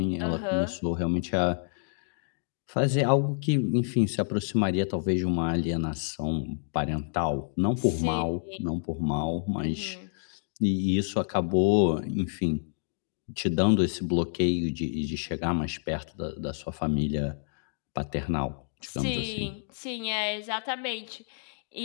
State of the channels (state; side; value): silent; right; digital silence